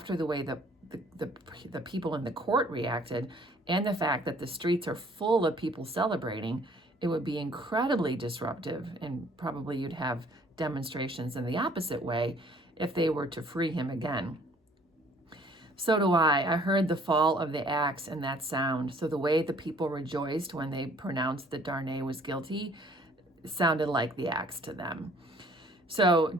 the way the people in the court reacted and the fact that the streets are full of people celebrating, it would be incredibly disruptive, and probably you'd have demonstrations in the opposite way if they were to free him again. So do I. I heard the fall of the axe and that sound. So the way the people rejoiced when they pronounced that Darnay was guilty sounded like the axe to them. So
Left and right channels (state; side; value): normal; both; correlation 0.57